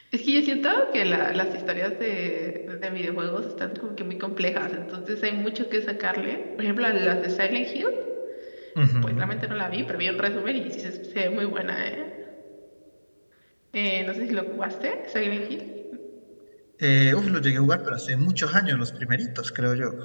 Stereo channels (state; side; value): inverted; both; correlation -1.00